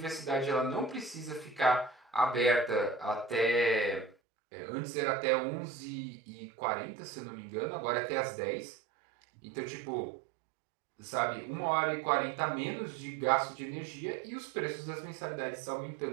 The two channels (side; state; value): left; drops out; at 4.2 s